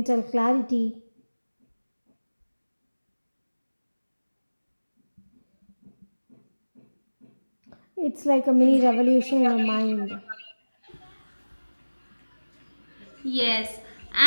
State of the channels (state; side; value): inverted; both; correlation -1.00